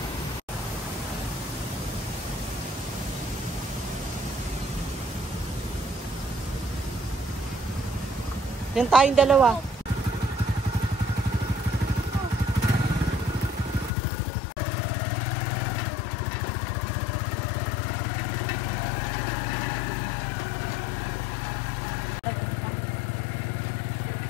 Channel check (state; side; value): drops out; right; at 13.9 s